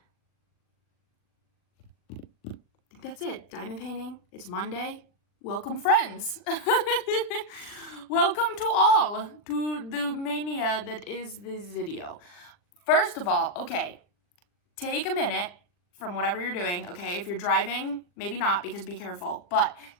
I think that's it. Diamond painting. It's Monday. Welcome, friends. Welcome to all to the mania that is this video. First of all, okay, take a minute from whatever you're doing, okay? If you're driving, maybe not because be careful, but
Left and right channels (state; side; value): late; right; 40 ms